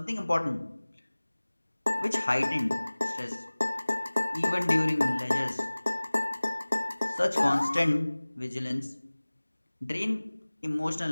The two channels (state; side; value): inverted; both; correlation -1.00